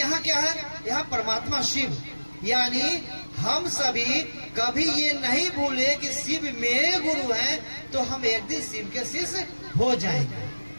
क्या है, यहाँ परमात्मा शिव। यानी हम सभी कभी ये नहीं भूले कि शिव मेरे गुरु हैं, तो हम एक दिन शिव के शिष्य हो जाएंगे,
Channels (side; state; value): both; inverted; correlation -1.00